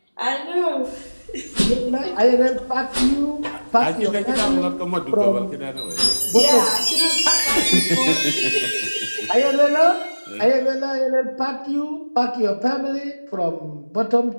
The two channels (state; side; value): inverted; both; correlation -1.00